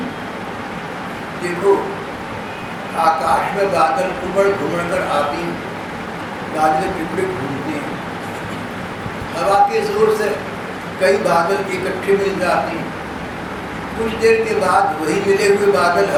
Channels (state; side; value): identical; both; correlation 1.00